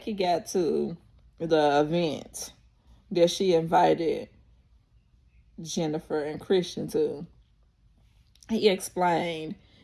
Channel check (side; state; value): both; identical; correlation 1.00